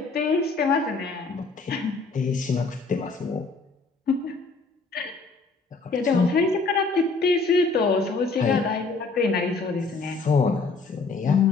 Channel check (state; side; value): quieter; right; 4.1 dB